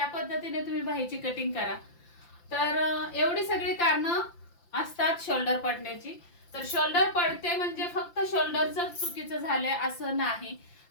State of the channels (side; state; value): right; late; 5.8 ms